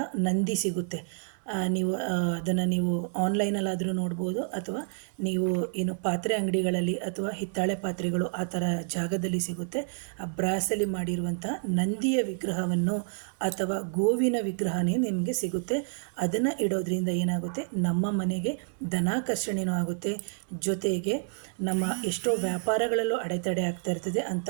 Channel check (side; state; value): left; silent; 59 dB below the other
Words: ನಂದಿ ಸಿಗುತ್ತೆ. ನೀವು ಅದನ್ನು ನೀವು ಆನ್ಲೈನಲ್ಲಾದರೂ ನೋಡ್ಬೋದು, ಅಥವಾ ನೀವು ಏನು ಪಾತ್ರೆ ಅಂಗಡಿಗಳಲ್ಲಿ ಅಥವಾ ಹಿತ್ತಾಳೆ ಪಾತ್ರೆಗಳು ಆ ಥರ ಜಾಗದಲ್ಲಿ ಸಿಗುತ್ತೆ. ಆ ಬ್ರಾಸಲ್ಲಿ ಮಾಡಿರುವಂಥ ನಂದಿಯ ವಿಗ್ರಹವನ್ನು ಅಥವಾ ಗೋವಿನ ವಿಗ್ರಹನೇ ನಿಮಗೆ ಸಿಗುತ್ತೆ. ಅದನ್ನು ಇಡೋದ್ರಿಂದ ಏನಾಗುತ್ತೆ, ನಮ್ಮ ಮನೆಗೆ ಧನಾಕರ್ಷಣೆಯೂ ಆಗುತ್ತೆ. ಜೊತೆಗೆ ನಮ್ಮ ಎಷ್ಟೋ ವ್ಯಾಪಾರಗಳಲ್ಲೂ ಅಡೆತಡೆ ಆಗ್ತಾ ಇರ್ತದೆ. ಅಂಥ